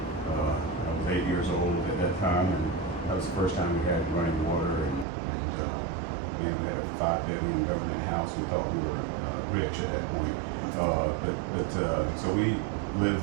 I was 8 years old at that time, and that was the first time we had running water, and we had a 5-bedroom government house. We thought we were rich at that point. So we lived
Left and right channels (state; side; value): drops out; left; at 5.1 s